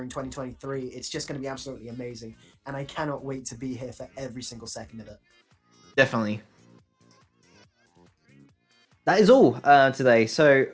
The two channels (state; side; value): identical; both; correlation 1.00